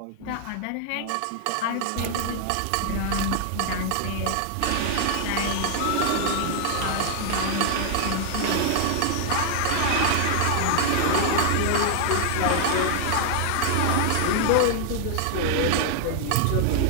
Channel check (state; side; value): different; both; correlation 0.00